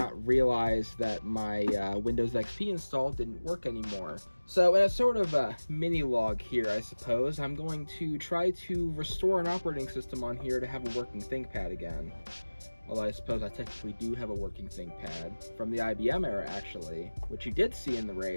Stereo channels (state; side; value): inverted; both; correlation -1.00